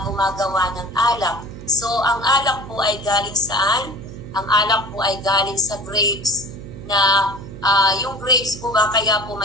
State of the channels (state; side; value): noise; right; hum, 13 dB below the sound